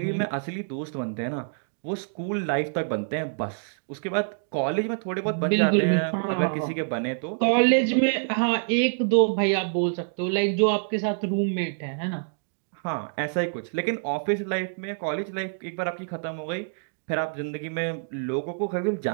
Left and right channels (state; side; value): silent; left; digital silence